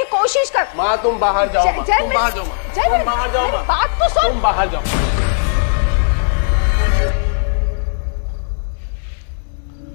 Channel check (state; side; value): silent; right; digital silence